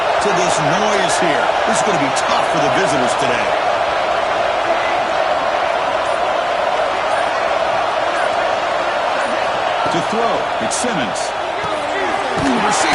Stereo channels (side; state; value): both; identical; correlation 1.00